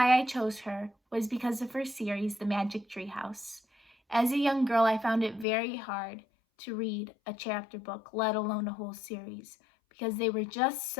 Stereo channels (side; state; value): right; drops out; at 5.5 s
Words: I chose her was because of her series, The Magic Tree House. As a young girl, I found it very hard to read a chapter book, let alone a whole series, because they were just